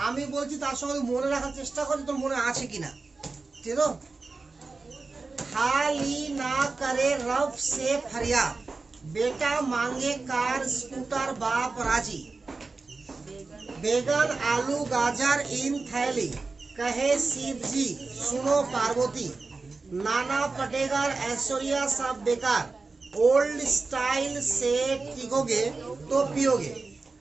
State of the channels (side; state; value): left; quieter; 3.9 dB